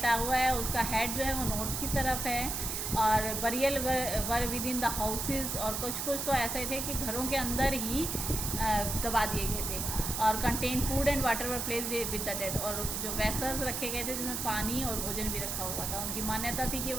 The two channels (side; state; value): right; noise; hiss, 2 dB below the sound